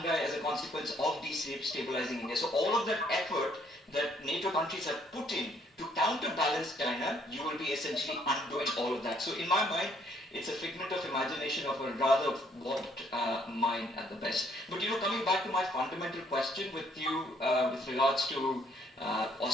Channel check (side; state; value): both; normal; correlation 0.67